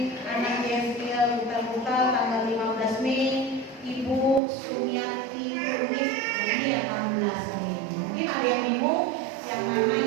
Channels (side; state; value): left; drops out; at 4.4 s